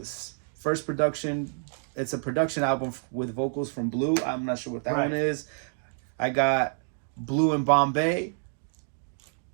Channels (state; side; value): silent; left; digital silence